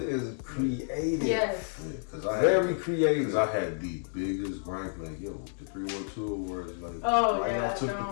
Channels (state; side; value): silent; right; digital silence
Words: is creative. Yes. Very creative. Because I had the biggest gripe, like the 312 awards, like I took the